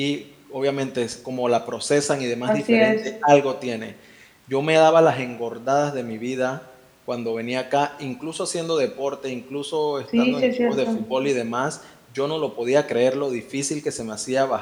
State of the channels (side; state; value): both; identical; correlation 1.00